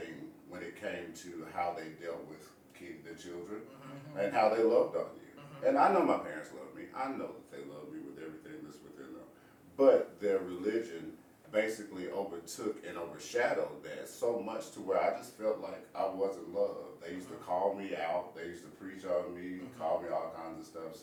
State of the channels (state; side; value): identical; both; correlation 1.00